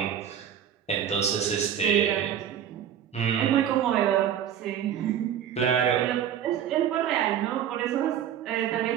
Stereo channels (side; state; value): left; quieter; 9.6 dB